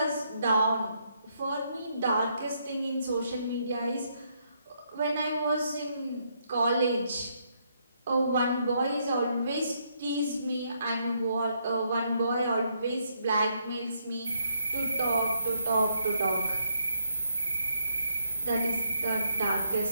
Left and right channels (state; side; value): inverted; both; correlation -0.74